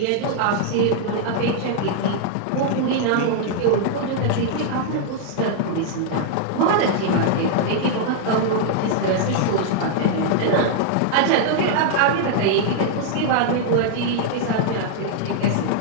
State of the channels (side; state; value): both; different; correlation -0.01